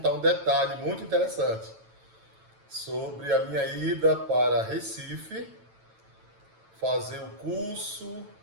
um detalhe muito interessante sobre a minha ida para Recife, fazer o curso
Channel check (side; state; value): left; late; 9.0 ms